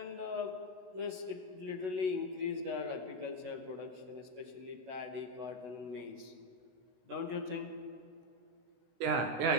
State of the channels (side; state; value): left; late; 16 ms